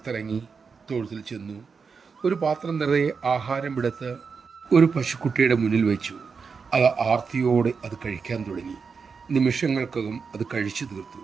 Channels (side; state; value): left; quieter; 5.4 dB